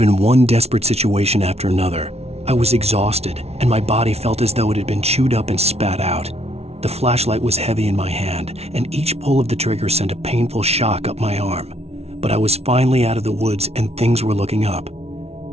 one desperate situation after another. I was exhausted, and my body felt as though it had been chewed up and spat out. The flashlight was heavy in my hand, and each pull of the trigger sent a painful shock up my arm. But I was finally out of the woods, and things were looking up.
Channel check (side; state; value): left; late; 0.31 ms